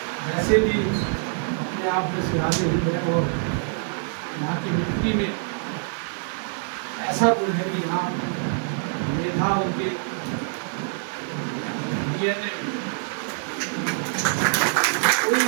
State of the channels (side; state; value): left; silent; 58 dB below the other